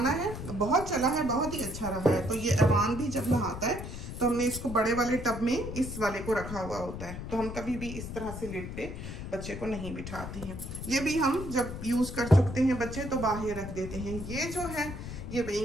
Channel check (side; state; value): left; noise; rumble, 8 dB below the sound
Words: है, बहुत चला है, बहुत ही अच्छा रहा है। तो ये अमान भी जब नहाता है तो हमने इसको बड़े वाले टब में इस वाले को रखा हुआ होता है, तो हम कभी भी इस तरह से लिड पे बच्चे को नहीं बिठाते हैं। ये भी हम जब यूज़ कर चुकते हैं बच्चे तो बाहर रख देते हैं। ये जो है ये